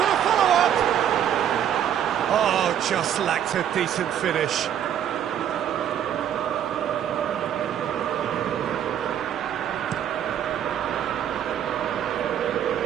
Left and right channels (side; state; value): left; quieter; 9.8 dB